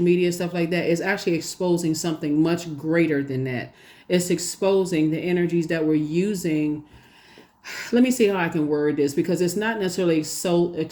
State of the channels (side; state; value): both; identical; correlation 1.00